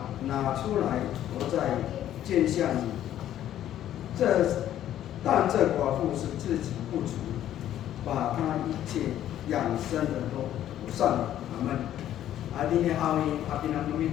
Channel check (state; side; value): quieter; right; 11.8 dB